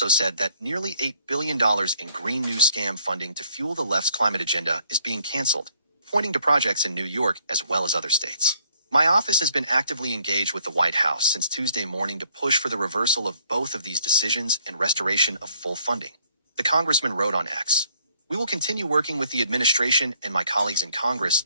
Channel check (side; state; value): both; inverted; correlation -0.65